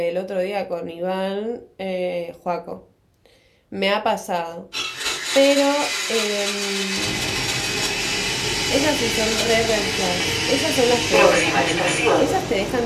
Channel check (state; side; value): identical; both; correlation 1.00